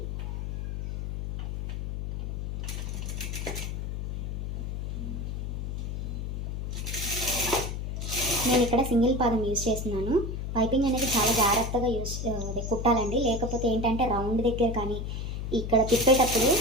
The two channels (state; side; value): noise; left; hum, 4 dB below the sound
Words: నేను ఇక్కడ సింగిల్ పాదం యూజ్ చేస్తున్నాను. పైపింగ్ అనేది చాలా జాగ్రత్తగా కుట్టాలండి. లేకపోతే ఏంటంటే రౌండ్ దగ్గర కానీ ఇక్కడ తిప్పేటప్పుడు